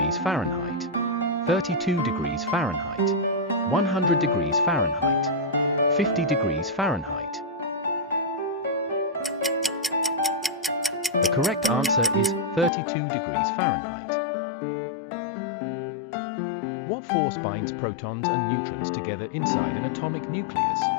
Fahrenheit, 32 degrees Fahrenheit, 100 degrees Fahrenheit, 50 degrees Fahrenheit. The correct answer is 32 degrees Fahrenheit. What force binds protons and neutrons together inside an atomic nucleus?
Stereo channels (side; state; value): right; drops out; at 12.7 s